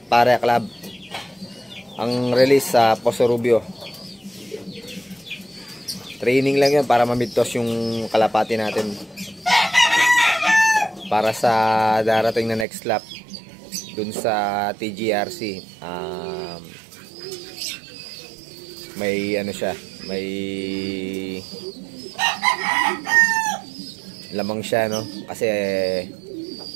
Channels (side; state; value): left; drops out; at 12.7 s